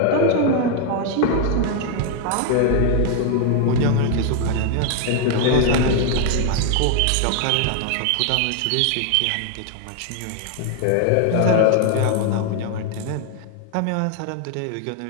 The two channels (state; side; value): different; both; correlation 0.00